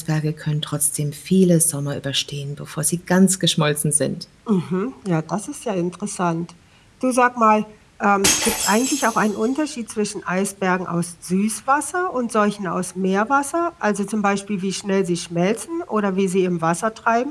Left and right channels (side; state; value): both; identical; correlation 1.00